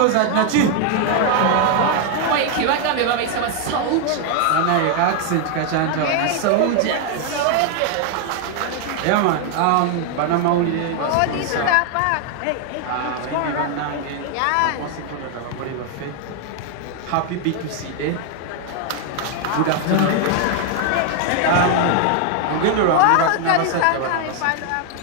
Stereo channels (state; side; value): different; both; correlation 0.00